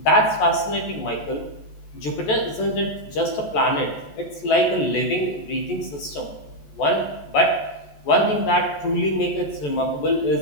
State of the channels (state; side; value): late; right; 14 ms